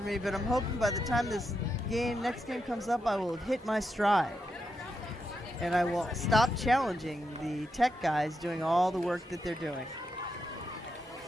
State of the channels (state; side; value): normal; both; correlation 0.84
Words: me, but I'm hoping by the time this next game comes up, I will hit my stride. And I will stop challenging the tech guys doing all the work that they're doing.